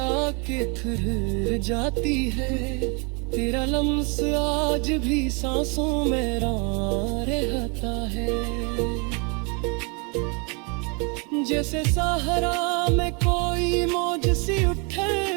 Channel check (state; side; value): quieter; left; 33.6 dB